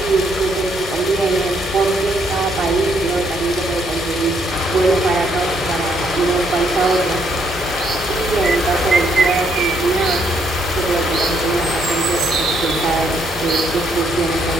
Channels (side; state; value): both; normal; correlation 0.72